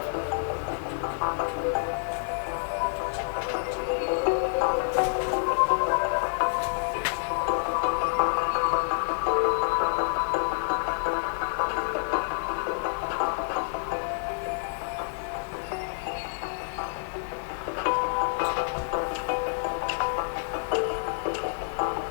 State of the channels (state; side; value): silent; right; digital silence